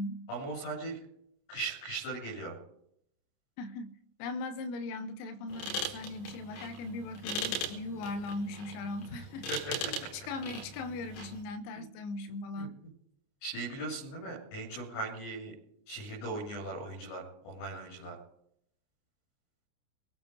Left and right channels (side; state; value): right; late; 29 ms